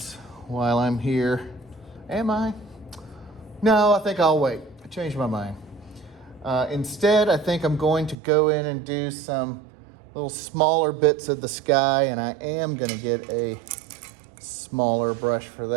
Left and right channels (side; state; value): left; drops out; at 8.2 s